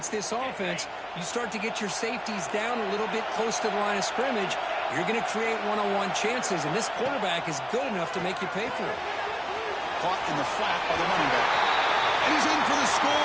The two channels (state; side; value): identical; both; correlation 1.00